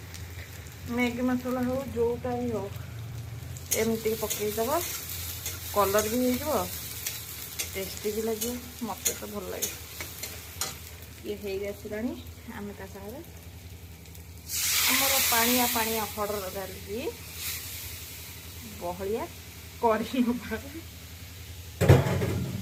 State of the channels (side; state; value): both; identical; correlation 1.00